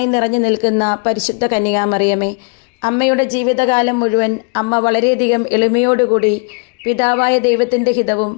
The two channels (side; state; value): right; quieter; 36.5 dB